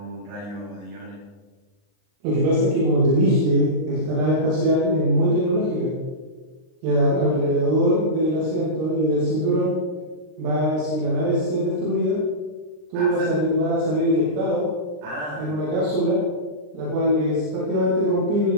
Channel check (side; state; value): left; late; 39 ms